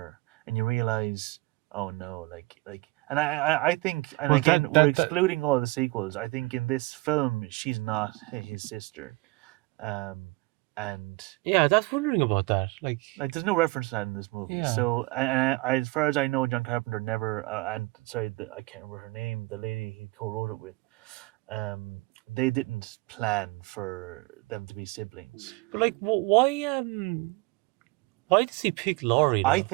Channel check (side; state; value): left; quieter; 23.6 dB